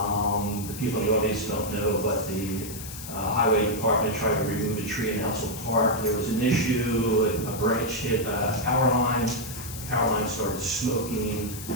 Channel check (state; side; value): noise; left; hiss, 11 dB below the sound